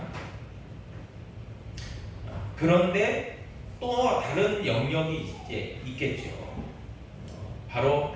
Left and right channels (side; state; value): both; identical; correlation 1.00